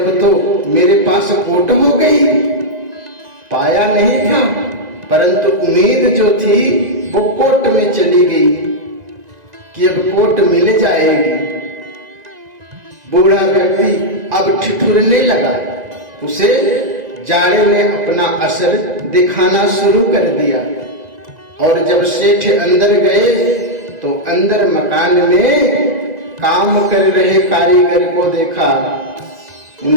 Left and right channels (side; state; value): left; late; 1.9 ms